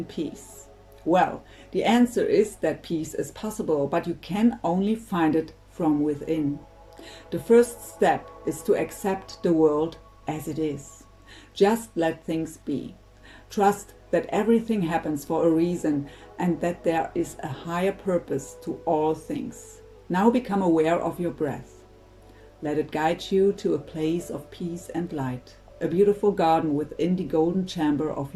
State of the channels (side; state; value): both; identical; correlation 1.00